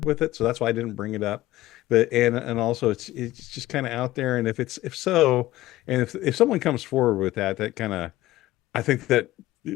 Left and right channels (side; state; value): right; quieter; 16.4 dB